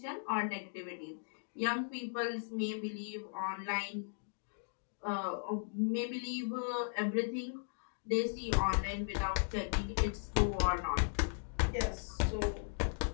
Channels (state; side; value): silent; right; digital silence